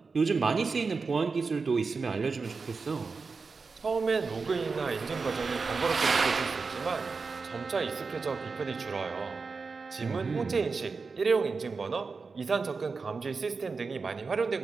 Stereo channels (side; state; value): left; quieter; 4.6 dB